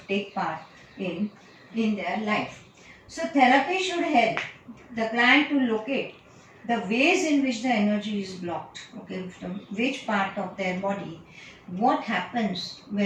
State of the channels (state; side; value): identical; both; correlation 1.00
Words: take part in their life. So therapy should help the client to locate the ways in which the energy is blocked, okay, from which part of their body, what happens